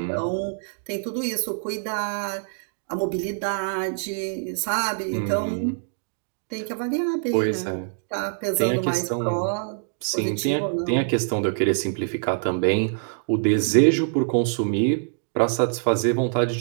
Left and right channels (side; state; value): left; silent; digital silence